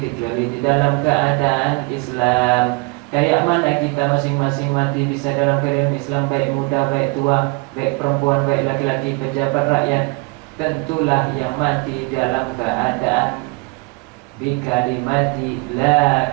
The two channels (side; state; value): left; quieter; 29.0 dB